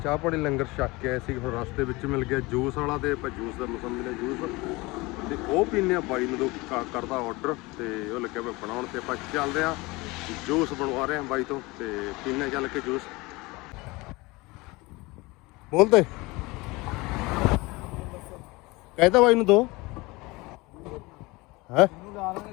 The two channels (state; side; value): quieter; right; 23.2 dB